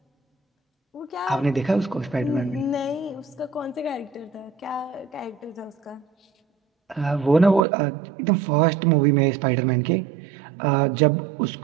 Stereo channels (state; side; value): drops out; left; at 7.6 s